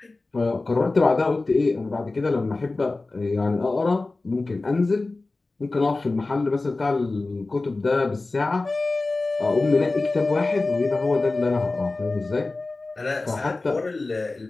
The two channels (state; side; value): quieter; right; 3.3 dB